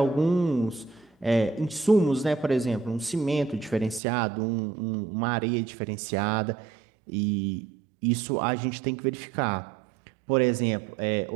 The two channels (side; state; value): left; drops out; at 4.0 s